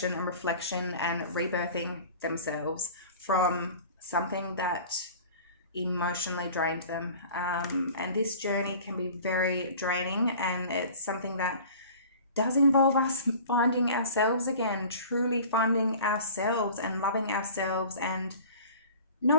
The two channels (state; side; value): inverted; both; correlation -0.43